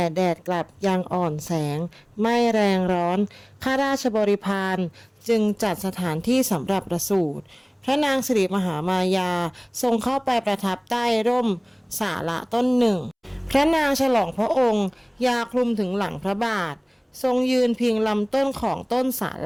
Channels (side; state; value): both; identical; correlation 1.00